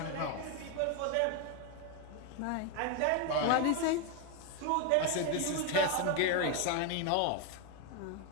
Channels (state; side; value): different; both; correlation 0.01